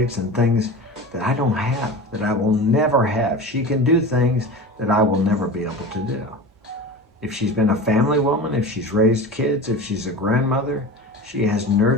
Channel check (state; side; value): normal; both; correlation 0.32